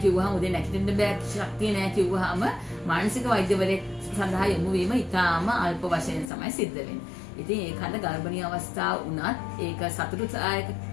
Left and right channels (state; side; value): drops out; right; at 6.3 s